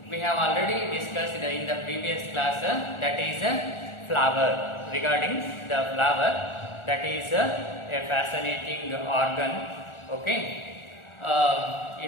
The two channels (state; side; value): late; right; 1.4 ms